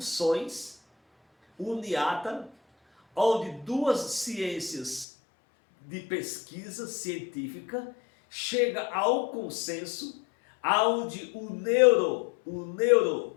uniatas, onde duas ciências de pesquisa científica chega ao consenso, aonde o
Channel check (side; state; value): right; drops out; at 5.1 s